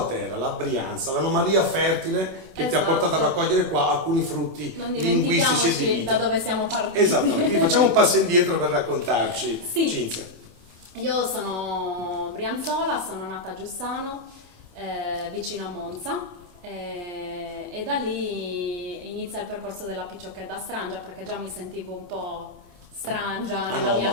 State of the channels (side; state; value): left; late; 26 ms